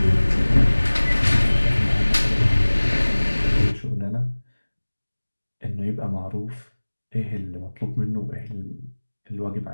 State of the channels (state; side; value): inverted; both; correlation -1.00